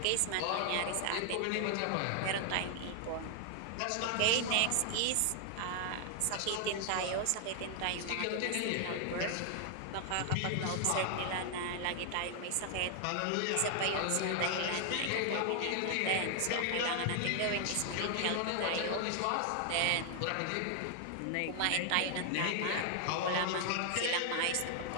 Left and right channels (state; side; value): different; both; correlation 0.00